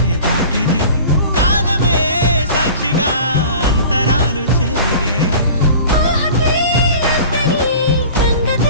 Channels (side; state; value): both; inverted; correlation -0.41